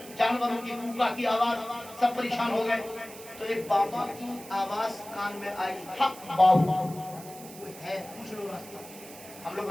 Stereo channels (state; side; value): noise; right; hiss, 17 dB below the sound